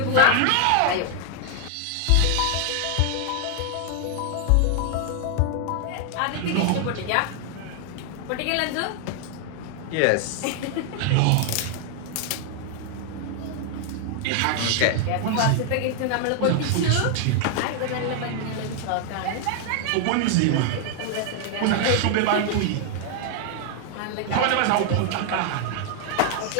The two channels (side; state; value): both; different; correlation 0.00